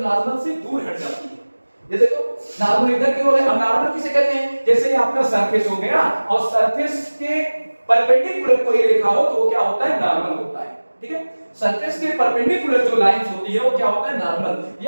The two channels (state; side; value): inverted; both; correlation -1.00